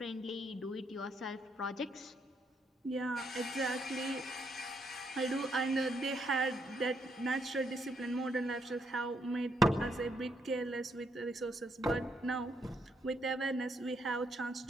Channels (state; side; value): normal; both; correlation 0.75